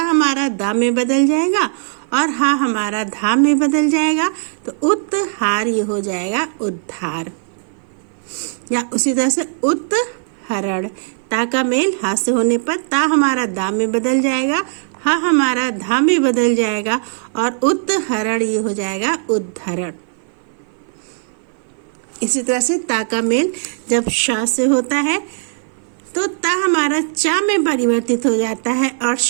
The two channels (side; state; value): left; silent; 57 dB below the other